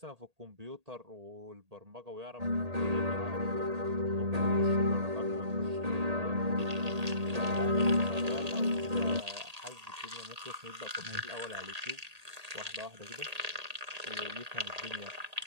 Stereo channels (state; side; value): late; left; 1.8 ms